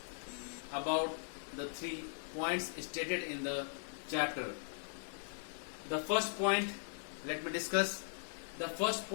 about the 3 points stated in the chapter. The first point, let me discuss. The first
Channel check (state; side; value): silent; right; digital silence